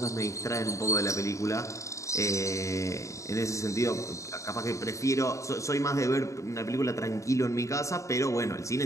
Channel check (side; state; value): right; late; 0.15 ms